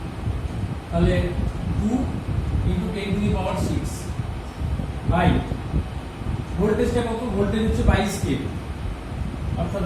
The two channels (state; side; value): identical; both; correlation 1.00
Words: তাহলে 2 into 10 to the power 6 by ভোল্টেজটা কত, ভোল্টেজ হচ্ছে 22 কেভি, অর্থাৎ